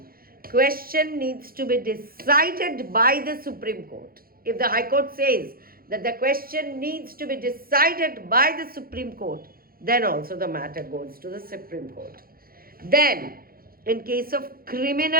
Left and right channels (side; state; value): left; late; 0.43 ms